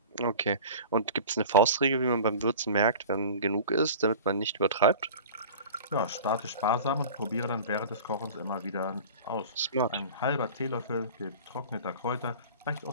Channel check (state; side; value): inverted; both; correlation -0.38